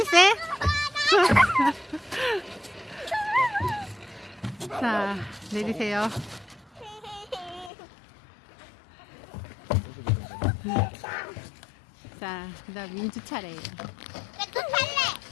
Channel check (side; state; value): right; drops out; at 7.7 s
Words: 세? 자, 내리세요. 자, 그 다음 민주 차례예요. 나 또